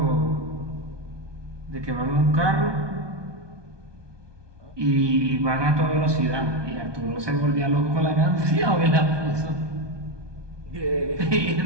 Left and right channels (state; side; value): late; left; 1.2 ms